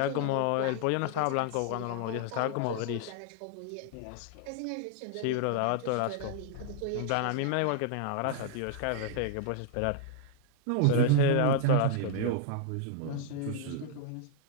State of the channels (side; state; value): both; different; correlation 0.00